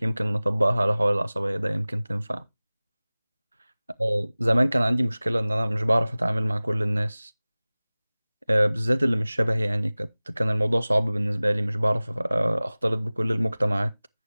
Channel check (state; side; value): inverted; both; correlation -0.99